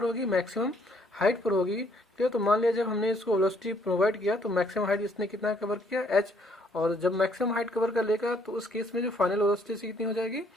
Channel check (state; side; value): normal; both; correlation 0.66